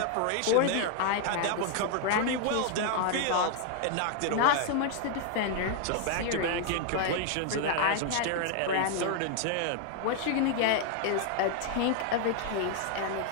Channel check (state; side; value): different; both; correlation 0.00